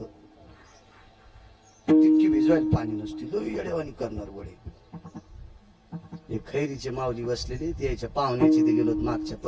तितकी भिजवायला पाणी नसते. लोही येड्यावानी करणार वडे. एक खैरीचे माऊली बसलेले, त्याच्या पाहुण्याची ते गेलो मागच्या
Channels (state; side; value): identical; both; correlation 1.00